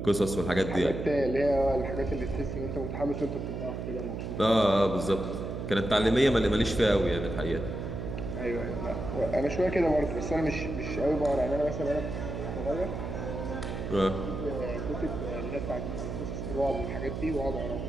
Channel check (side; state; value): right; noise; hum, 5 dB below the sound